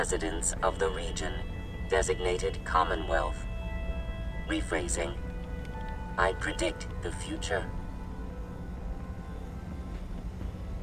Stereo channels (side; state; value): both; identical; correlation 1.00